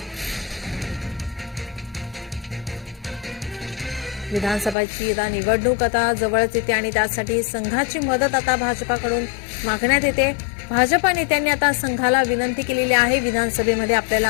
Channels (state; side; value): drops out; right; at 4.8 s